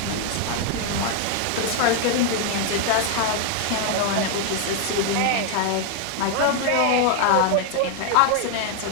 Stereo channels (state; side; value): different; both; correlation 0.00